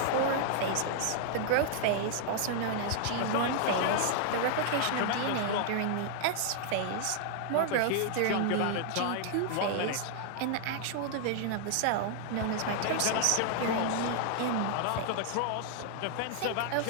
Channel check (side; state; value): both; different; correlation -0.01